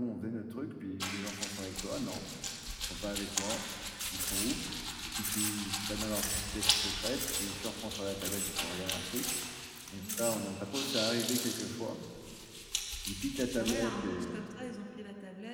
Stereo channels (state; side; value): identical; both; correlation 1.00